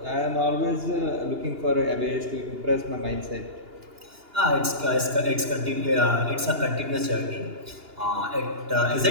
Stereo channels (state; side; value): late; left; 2.8 ms